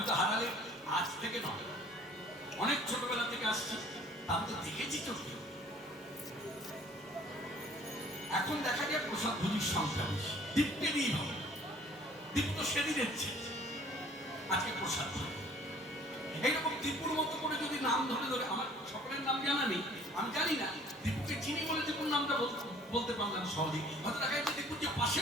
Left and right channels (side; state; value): both; normal; correlation 0.54